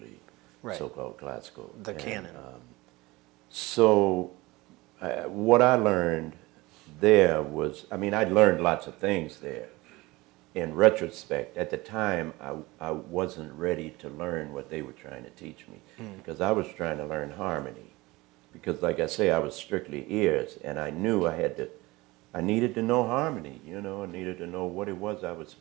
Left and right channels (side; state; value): left; quieter; 21.4 dB